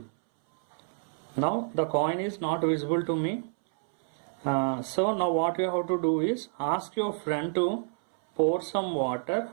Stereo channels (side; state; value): left; silent; 59 dB below the other